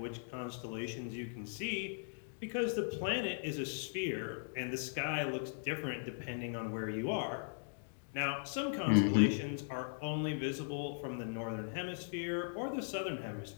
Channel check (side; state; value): right; silent; digital silence